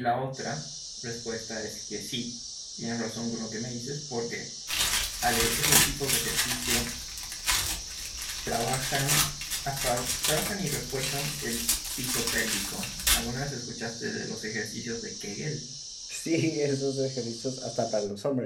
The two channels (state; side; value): identical; both; correlation 1.00